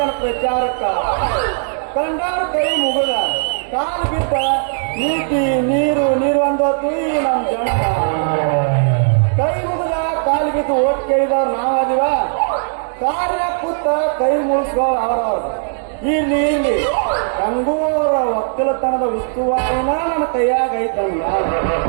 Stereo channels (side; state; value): left; silent; 68 dB below the other